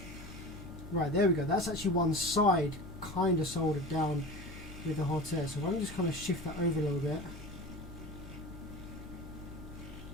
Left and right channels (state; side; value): noise; right; hum, 26 dB below the sound